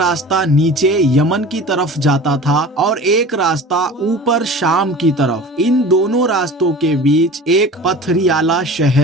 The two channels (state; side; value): normal; both; correlation 0.38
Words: नीचे यमन की तरफ जाता था और एक रास्ता ऊपर शाम की तरफ। इन दोनों रास्तों के बीच एक पथरियाला